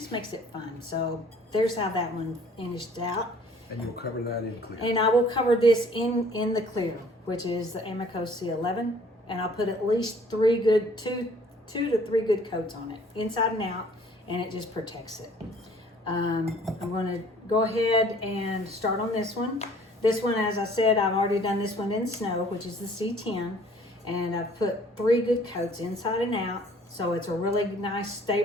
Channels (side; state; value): both; normal; correlation 0.55